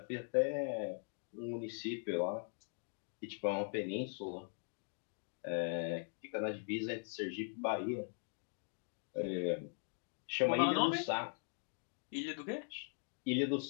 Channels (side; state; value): right; silent; 50 dB below the other